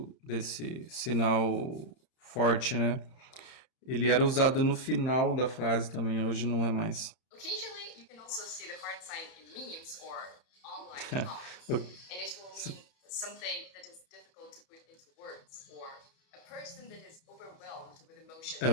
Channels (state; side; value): late; right; 31 ms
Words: desse sinal forte, né? Ele era usado no final da frase também, hoje não é mais. Occasionally, you can also see the heart sign in memes or online comments, and it will mean something that is difficult to put into words, or a person that is overwhelmed with emotion. É